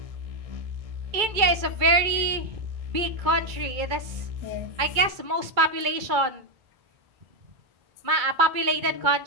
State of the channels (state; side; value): late; left; 2.2 ms